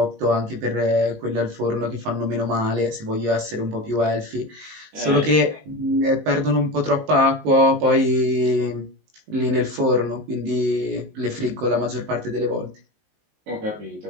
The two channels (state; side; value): late; left; 19 ms